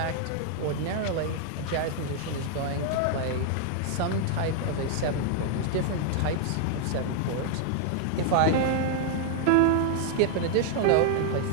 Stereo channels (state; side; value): different; both; correlation 0.00